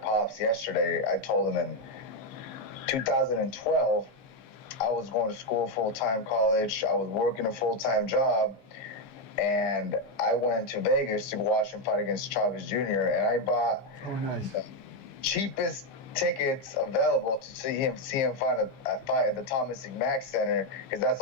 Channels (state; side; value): late; right; 15 ms